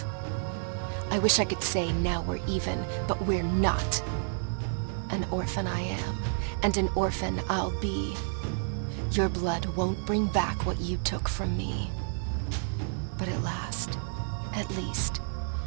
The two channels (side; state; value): left; silent; 58 dB below the other